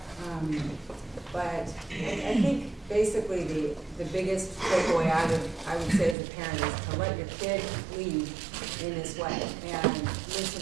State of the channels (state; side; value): drops out; left; at 6.2 s